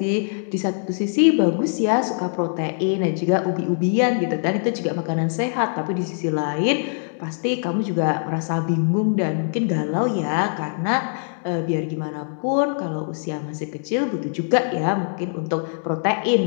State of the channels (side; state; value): right; silent; 64 dB below the other